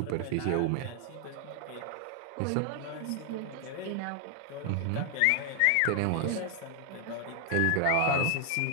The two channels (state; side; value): different; both; correlation 0.00